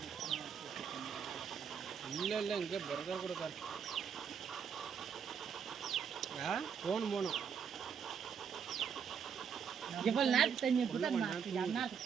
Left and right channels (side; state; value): left; quieter; 7.1 dB